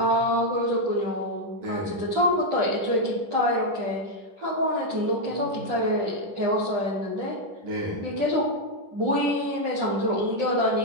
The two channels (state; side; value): late; left; 10 ms